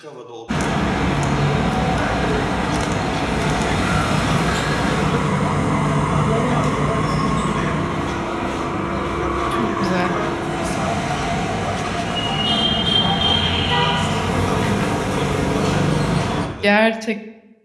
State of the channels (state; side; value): identical; both; correlation 1.00